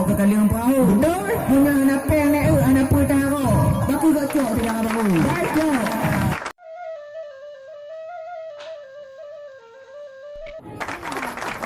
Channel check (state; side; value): identical; both; correlation 1.00